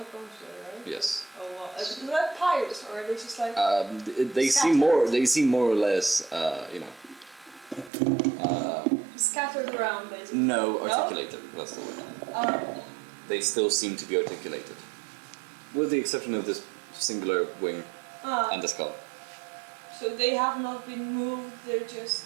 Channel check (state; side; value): drops out; left; at 7.9 s